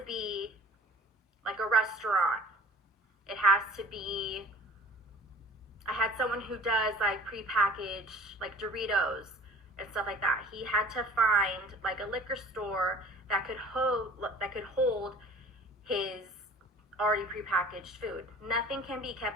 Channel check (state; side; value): normal; both; correlation 0.46